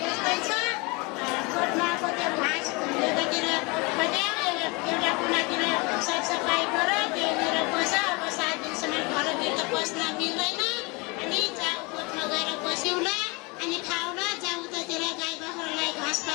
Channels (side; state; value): right; quieter; 27.7 dB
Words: यस्तै छ। गोठमा कतै घाँस एकातिर कतै एउटा कुनातिर सरसफाइ गर, त्यहीँनिर बस। अब 7 दिनसम्म घरभित्र बस्न मिल्दैन। अनि जाऊ गोठमा गएर बस्यौला, अनि खाउला। जाऊ उतातिर गाई बाख्रालाई